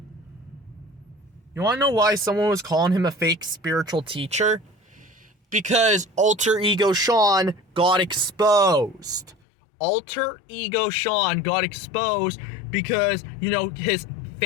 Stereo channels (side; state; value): right; drops out; at 9.3 s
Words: You want to know why someone was calling him a fake spiritual teacher? Because Alter Ego Sean got exposed. Alter Ego Sean got exposed because, you know, his